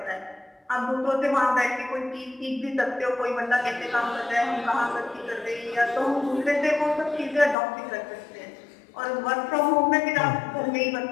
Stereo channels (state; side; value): drops out; right; at 7.6 s